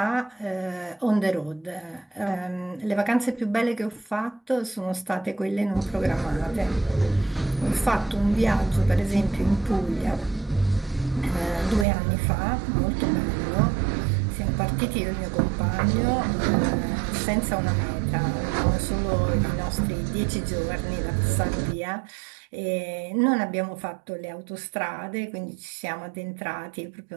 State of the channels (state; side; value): drops out; left; at 11.9 s